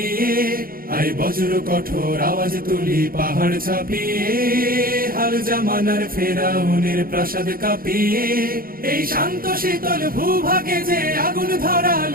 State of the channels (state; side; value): late; left; 0.42 ms